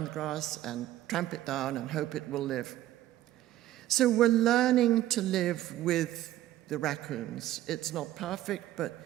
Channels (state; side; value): quieter; left; 14.1 dB